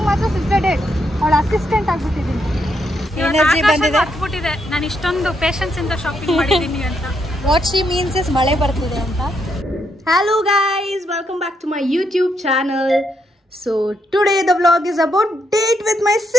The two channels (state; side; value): normal; both; correlation 0.78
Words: ಮಾತ್ರ ಸಿಸ್ಟರ್ ಡೇಟ್ ಅವಳ ಅಸಿಸ್ಟೆಂಟ್ ಆಗ್ಬಿಟ್ಟಿದ್ದೀನಿ. ಎನರ್ಜಿ ಬಂದಿದೆ. ನಾನು ಇಷ್ಟೊಂದು ಪೇಷನ್ಸ್ ಇಂದ ಶಾಪಿಂಗ್ ಮಾಡಿದ್ದೀನಿ ಅಂತ. ವಾಟ್ ಶಿ ಮೀನ್ಸ್ ಇಸ್ ಮಳೆ ಬರ್ತಿದೆ ಅಂತ. Hello guys, welcome back to my YouTube channel. So today the vlog is about date with my